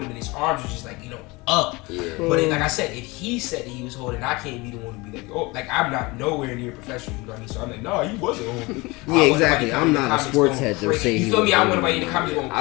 him, and his arms were just like up. Yeah. But like I said, if he said that he was holding, I can't be the one to be like, oh, like I'm not nowhere near professional. You know what I mean? So I'm like, no, he wasn't holding. Yeah, exactly. I'm not a sports head to say you feel me? I want somebody in the comments going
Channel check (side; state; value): right; quieter; 24.0 dB